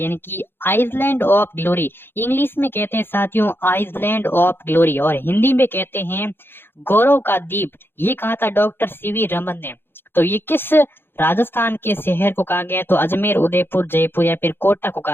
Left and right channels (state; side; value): late; right; 0.10 ms